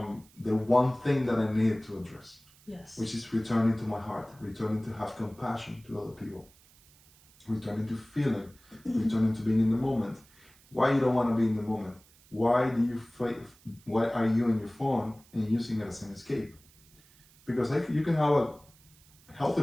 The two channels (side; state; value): right; noise; hiss, 28 dB below the sound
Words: the one thing that I needed to address. Yes. Which is returning to my heart, returning to have compassion to other people, returning to feeling, returning to being in the moment. Why you don't want to be in the moment? Why do you why are you on your phone and using it as an escape? Because you can have a healthy